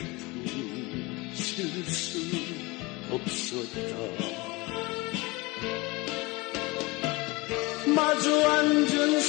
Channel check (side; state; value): right; quieter; 24.2 dB